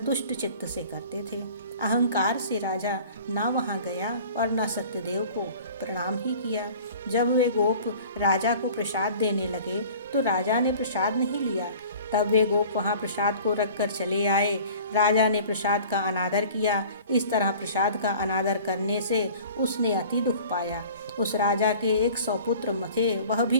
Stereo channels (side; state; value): both; inverted; correlation -0.45